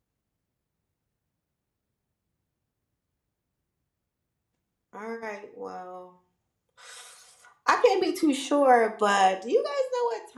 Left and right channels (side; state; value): both; identical; correlation 1.00